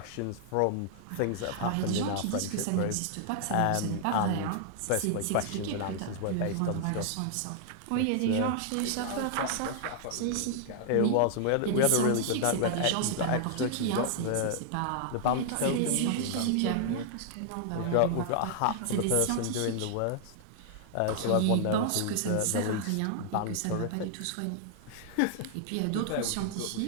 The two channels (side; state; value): both; different; correlation -0.01